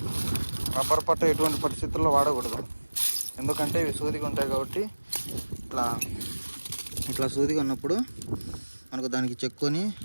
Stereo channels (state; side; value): inverted; both; correlation -1.00